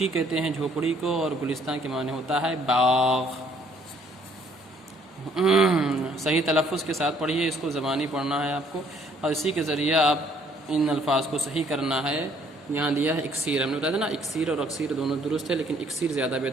کہتے ہیں جھوپڑی کو، اور گلستان کے معنی ہوتا ہے باغ۔ صحیح تلفظ کے ساتھ پڑھیے، اس کو زبانی پڑھنا ہے آپ کو، اور اسی کے ذریعہ آپ ان الفاظ کو صحیح کرنا ہے۔ یہاں دیا ہے اکسیر، ہم نے بتایا تھا نا، اکسیر اور اکسیر دونوں درست ہے، لیکن اکسیر زیادہ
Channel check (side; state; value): both; normal; correlation 0.63